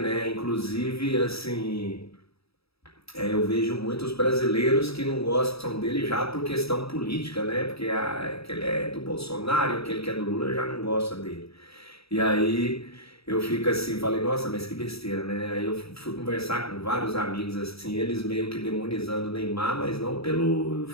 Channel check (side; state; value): right; late; 0.77 ms